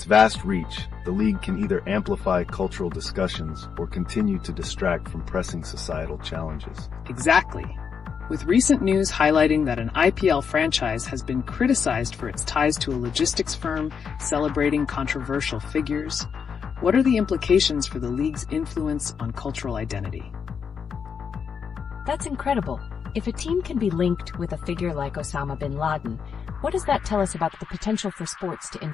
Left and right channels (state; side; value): quieter; right; 6.6 dB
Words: vast reach, the league can either amplify cultural discussions or continue to distract from pressing societal challenges. Exactly. With recent news highlighting that an IPL franchise has been criticized for its ties to a logistics firm celebrating controversial figures, what are the implications for the league's influence on cultural identity? That's incredible. If a team can be linked with a figure like Osama bin Laden, what does that tell us about the potential for sports to